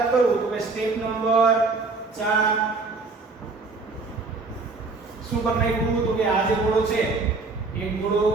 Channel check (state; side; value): quieter; left; 3.9 dB